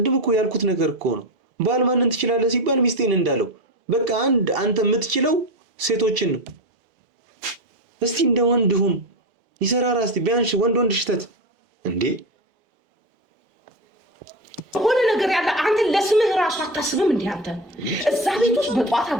እኮ ያልኩት ነገር እኮ ነው። ባል ማንን ትችላለህ ሲባል ሚስቴን እንዳለው በቃ አንተ የምትችለው ሴቶችን ነው። እስቲ እንደ ወንድ ሁን፣ ይሰራራ። እስቲ ቢያንስ ወንድ ሽተት እንዴ ሆነ ነገር ያለ አንተ ለስምህ ራሱ አታስብም እንዴ? አንተ እዛ ቤት ውስጥ በጧት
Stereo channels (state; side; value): normal; both; correlation 0.18